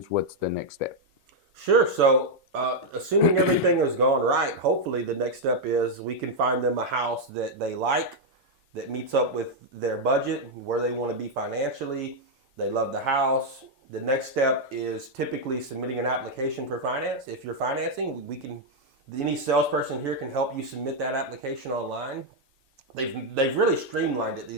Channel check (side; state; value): both; normal; correlation -0.01